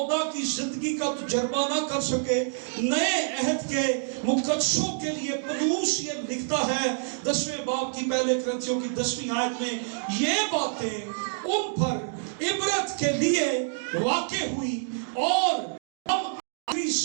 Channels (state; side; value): silent; left; digital silence